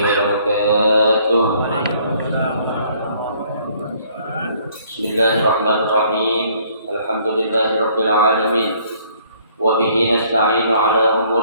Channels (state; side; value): inverted; both; correlation -0.62